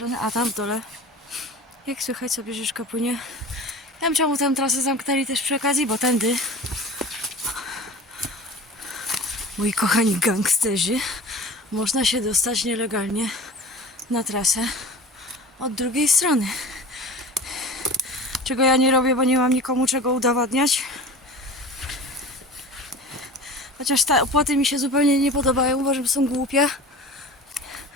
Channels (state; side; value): normal; both; correlation 0.37